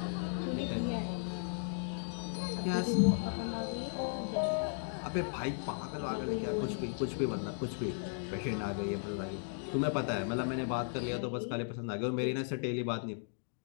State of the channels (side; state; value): right; silent; digital silence